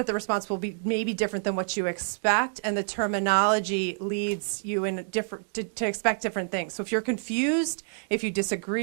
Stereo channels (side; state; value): left; silent; digital silence